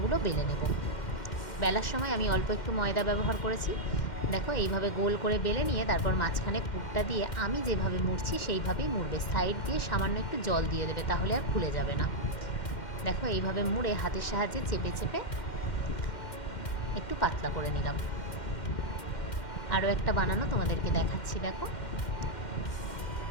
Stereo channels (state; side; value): late; right; 2.1 ms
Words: বেলে নেব। বেলার সময় আমি অল্প একটু ময়দা ব্যবহার করেছি। দেখো এইভাবে গোল করে বেলে নিয়ে তারপর মাঝখানে পুরটা দিয়ে আমি যেভাবে মুড়ছি সেইভাবেই মুড়বে। সাইড দিয়ে সামান্য একটু জল দিয়ে দেবে, তাহলে আর খুলে যাবে না। দেখো এইভাবে মুড়ে হাতের সাহায্যে চেপে চেপে একটু পাতলা করে নিলাম। আরও একটা বানানো তোমাদেরকে দেখাচ্ছি। দেখো